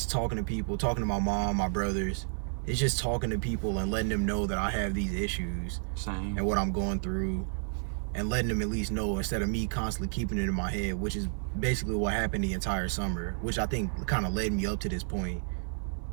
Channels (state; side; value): silent; left; 57 dB below the other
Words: talking to people, talking to my mom, my brothers. It's just talking to people and letting them know that I have these issues. Same. And what I'm going through, and letting them at least know instead of me constantly keeping it in my head, which is basically what happened the entire summer, which I think kind of led me up to this point,